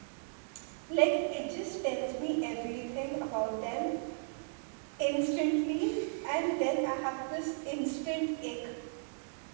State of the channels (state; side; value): silent; left; digital silence